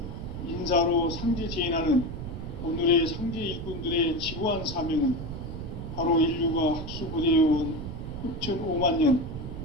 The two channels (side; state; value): right; noise; rumble, 7 dB below the sound